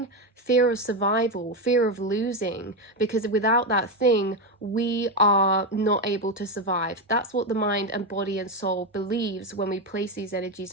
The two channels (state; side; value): normal; both; correlation 0.11